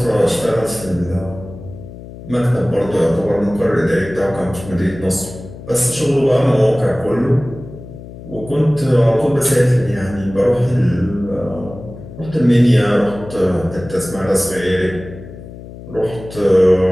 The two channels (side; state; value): left; noise; hum, 15 dB below the sound